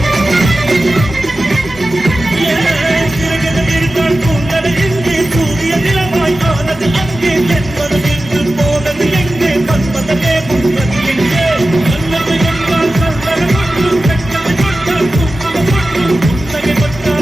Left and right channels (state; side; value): normal; both; correlation 0.94